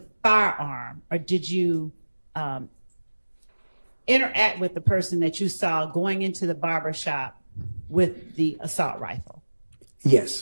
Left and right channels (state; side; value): inverted; both; correlation -1.00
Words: firearm, or did you interact with the person that you saw going into the barber shop with the assault rifle?